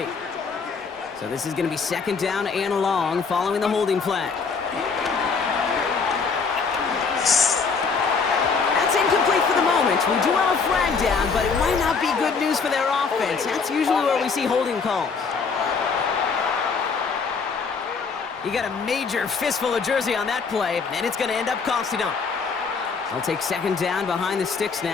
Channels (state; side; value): quieter; right; 5.1 dB